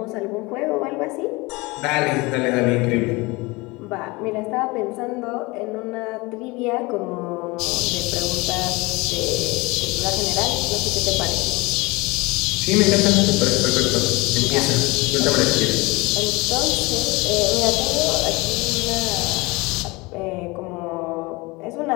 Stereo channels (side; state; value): right; quieter; 24.0 dB